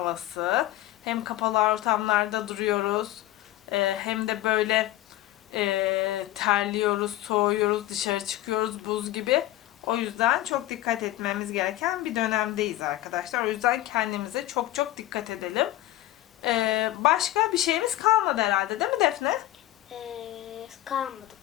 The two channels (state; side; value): quieter; right; 15.2 dB